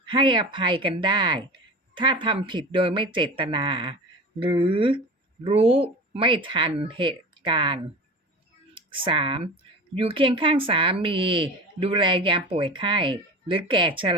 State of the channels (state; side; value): normal; both; correlation 0.32